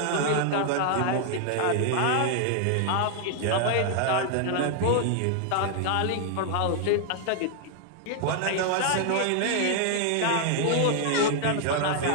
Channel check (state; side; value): different; both; correlation 0.00